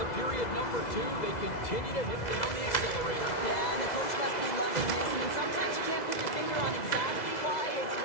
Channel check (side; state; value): right; late; 2.0 ms